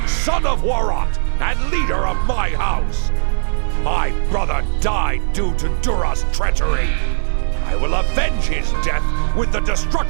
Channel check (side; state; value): left; silent; 56 dB below the other